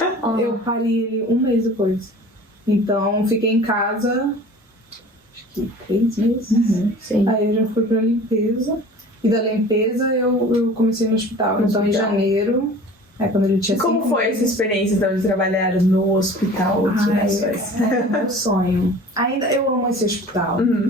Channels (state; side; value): normal; both; correlation 0.43